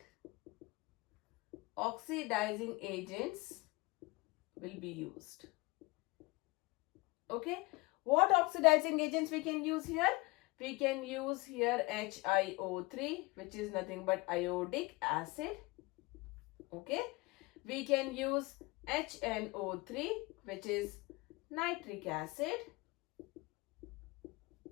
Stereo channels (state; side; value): quieter; right; 23.9 dB